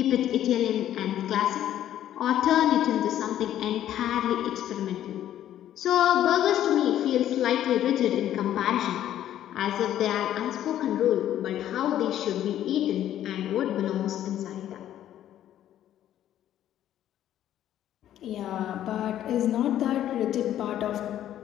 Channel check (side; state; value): right; quieter; 11.7 dB